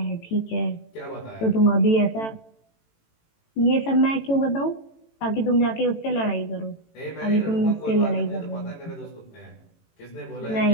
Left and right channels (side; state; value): right; late; 18 ms